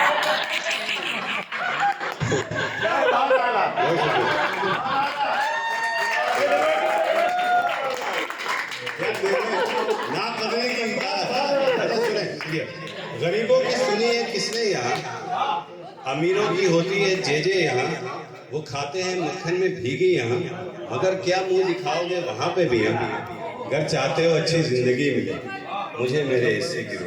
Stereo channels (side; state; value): both; identical; correlation 1.00